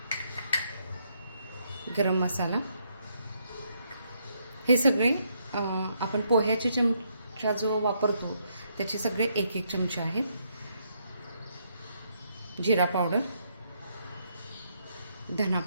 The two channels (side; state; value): both; inverted; correlation -0.75